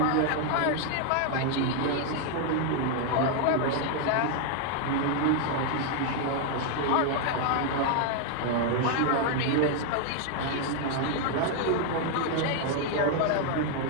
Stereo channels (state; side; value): different; both; correlation 0.00